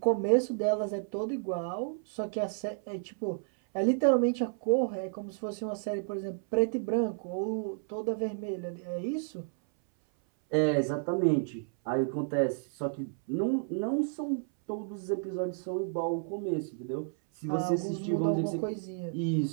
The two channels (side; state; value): left; silent; 57 dB below the other